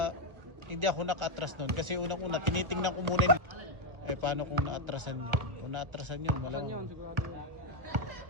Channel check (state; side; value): late; left; 1.2 ms